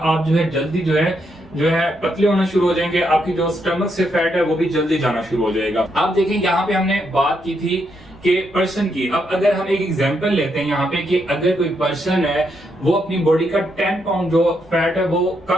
जो है जल्दी जो है पतले होना शुरू हो जाएंगे, आपकी जो स्टमक से फैट है वो भी जल्दी जाना शुरू हो जाएगा। आप देखें, यहाँ पे हमने बात की थी कि पर्सन की। अब अगर हम एक एग्जांपल लेते हैं यहाँ पे कि अगर कोई पर्सन है वो अपनी बॉडी का 10 पाउंड जो फैट है वो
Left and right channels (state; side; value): noise; right; rumble, 28 dB below the sound